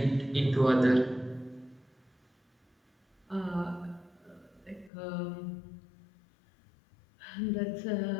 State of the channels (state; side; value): drops out; right; at 4.9 s